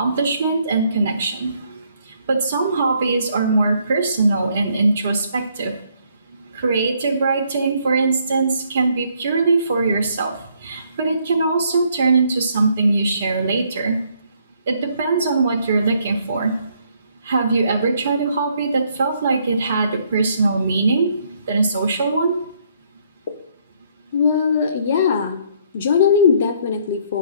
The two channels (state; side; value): inverted; both; correlation -0.68